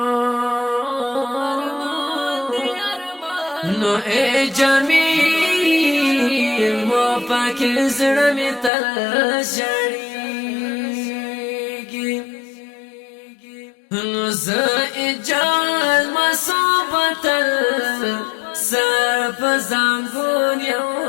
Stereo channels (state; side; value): drops out; right; at 8.7 s